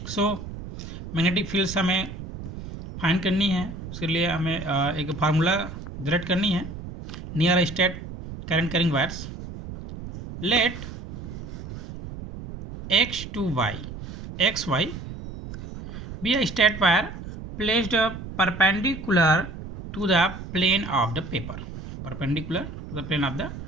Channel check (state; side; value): noise; right; rumble, 10 dB below the sound